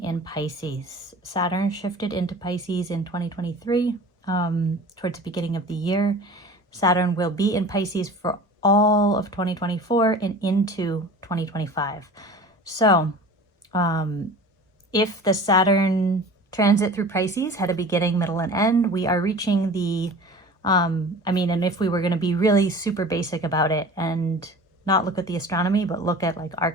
in Pisces. Saturn shifted into Pisces in 2023, towards the beginning of the year. Saturn will be in Pisces for all of 2024 and into 2025. So if the Saturn transit through Pisces had a beginning, middle, and end, we are reaching the, and if we were going to be really super basic about it and not look at the astronomy, but look at like our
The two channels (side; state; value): both; normal; correlation 0.39